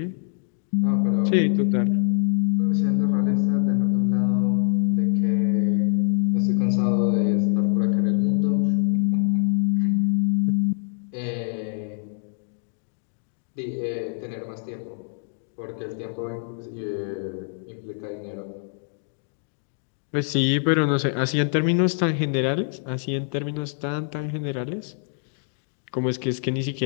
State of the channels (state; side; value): silent; right; digital silence